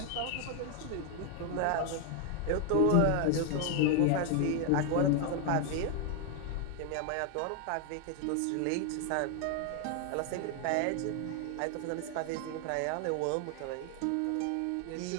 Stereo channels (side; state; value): both; different; correlation 0.00